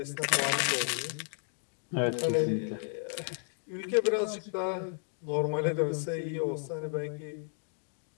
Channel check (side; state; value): right; silent; 56 dB below the other